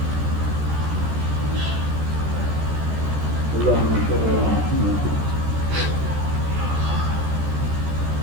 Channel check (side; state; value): left; late; 14 ms